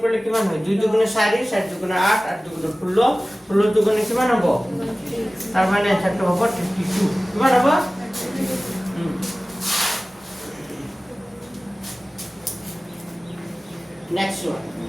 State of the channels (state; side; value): normal; both; correlation 0.97